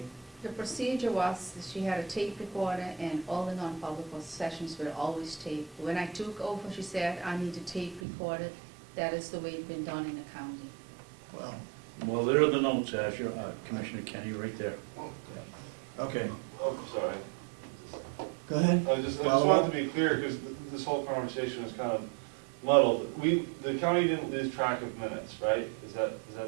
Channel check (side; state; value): left; drops out; at 8.0 s